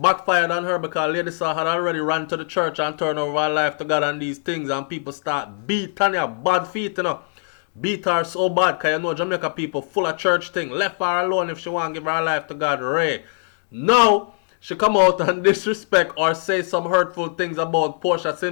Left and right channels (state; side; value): silent; right; 63 dB below the other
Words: on her because Lady Saw had already ran to the church and turned over her life to God and these things, and people start beat Tanya bad feet, Beat her so bad because Jamaica people full of church thing. Left her alone if she want to give her life to God. Ray. Now she come out and disrespect or say some hurtful things about Portia